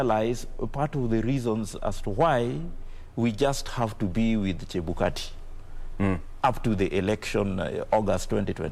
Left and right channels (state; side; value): identical; both; correlation 1.00